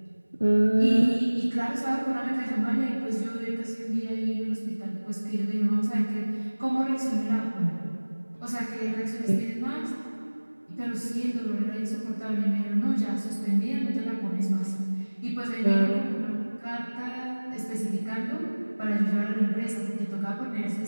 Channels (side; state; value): both; inverted; correlation -1.00